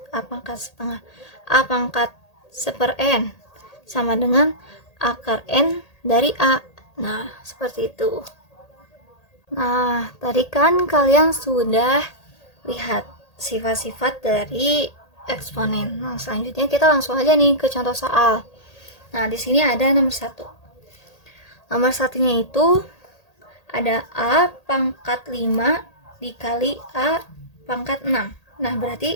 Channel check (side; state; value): right; late; 1.8 ms